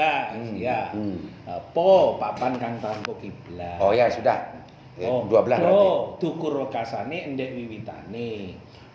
Ya. Po papan kang tanpa kiblat. Oh ya, sudah. 12 berarti. Dukur wekasane endek wiwitane.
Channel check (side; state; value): both; identical; correlation 1.00